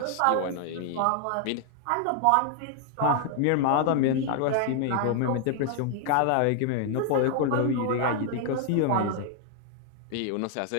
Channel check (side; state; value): both; different; correlation 0.00